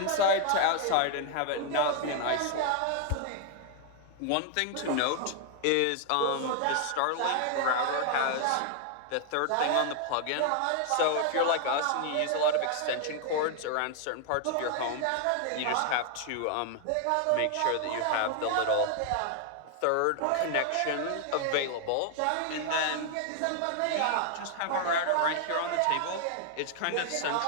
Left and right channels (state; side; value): different; both; correlation 0.00